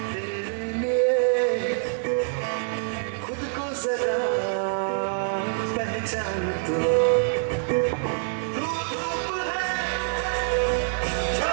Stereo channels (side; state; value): left; silent; 61 dB below the other